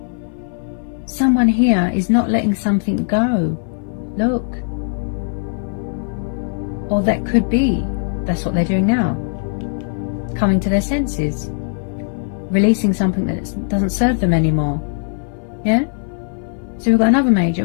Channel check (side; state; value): right; silent; 57 dB below the other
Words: Someone here is not letting something go. Look. Or that could be. That's what they're doing now. Coming to their senses. Releasing something that doesn't serve them anymore. Yeah? So we've got another major.